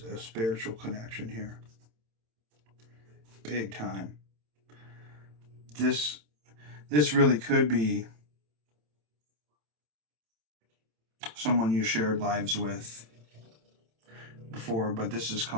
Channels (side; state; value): left; late; 27 ms